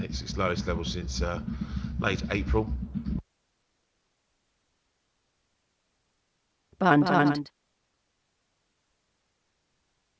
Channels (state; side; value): identical; both; correlation 1.00